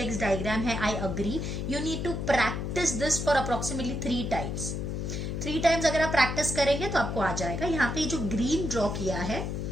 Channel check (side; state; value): left; noise; hum, 3 dB below the sound